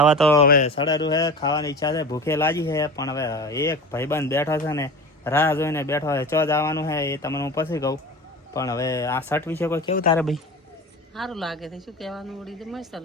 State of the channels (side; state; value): both; normal; correlation 0.33